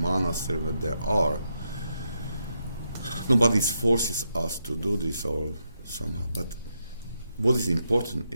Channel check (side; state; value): both; inverted; correlation -0.82